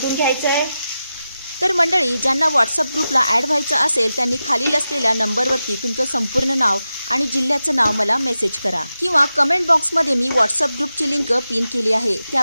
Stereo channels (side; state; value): both; inverted; correlation -0.92